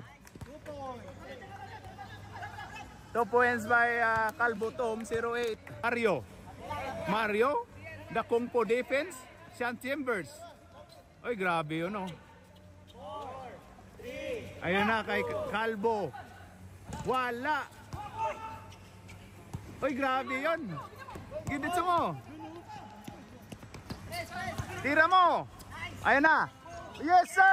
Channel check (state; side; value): identical; both; correlation 1.00